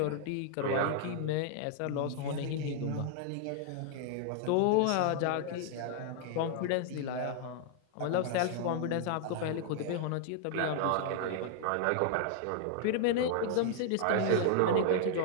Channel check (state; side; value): different; both; correlation 0.00